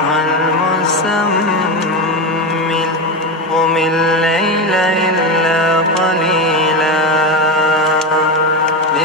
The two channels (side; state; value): both; normal; correlation 0.16